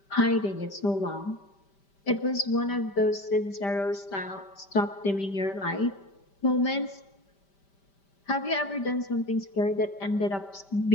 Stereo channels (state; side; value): late; right; 5.1 ms